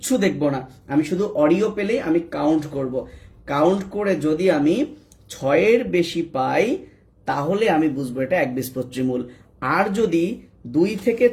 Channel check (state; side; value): identical; both; correlation 1.00